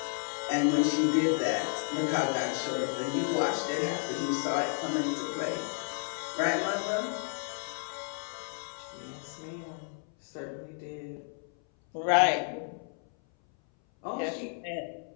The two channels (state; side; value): silent; right; 57 dB below the other